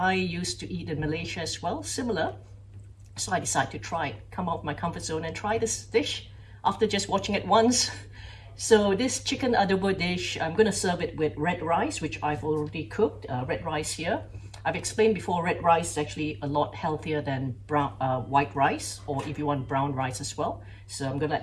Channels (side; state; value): both; identical; correlation 1.00